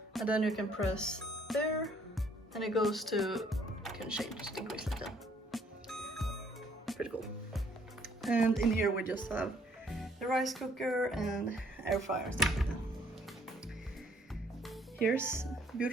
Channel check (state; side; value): normal; both; correlation 0.63